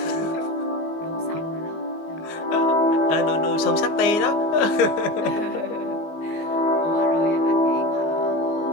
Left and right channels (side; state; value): right; late; 19 ms